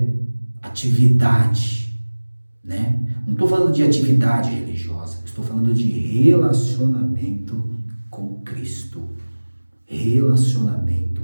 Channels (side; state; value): both; inverted; correlation -1.00